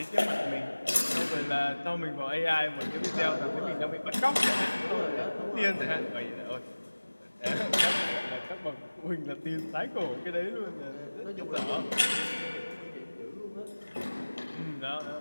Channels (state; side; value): inverted; both; correlation -1.00